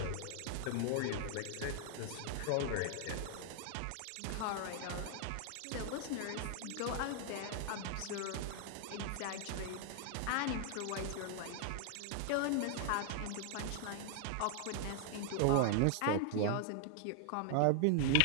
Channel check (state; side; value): different; both; correlation 0.00